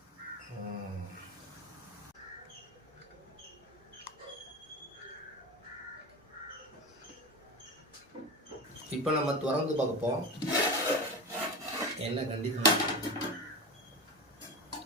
இப்போ நம்ம திறந்து பார்ப்போம் என்ன கண்டிஷன்.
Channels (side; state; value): both; normal; correlation 0.25